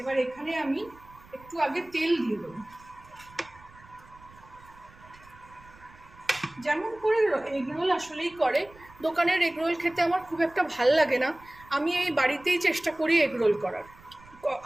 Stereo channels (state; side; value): noise; right; rumble, 24 dB below the sound